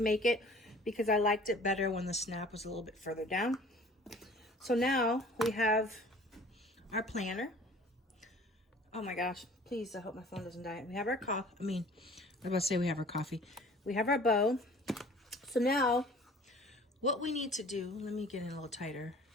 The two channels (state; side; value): normal; both; correlation 0.49